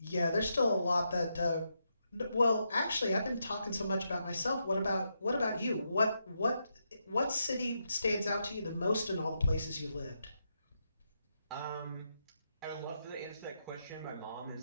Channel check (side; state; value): both; inverted; correlation -0.82